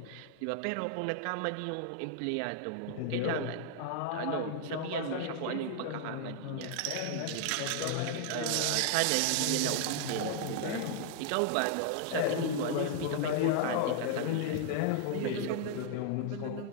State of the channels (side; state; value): both; different; correlation 0.00